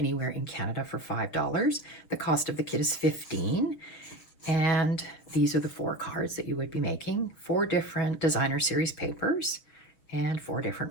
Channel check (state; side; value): late; right; 6.6 ms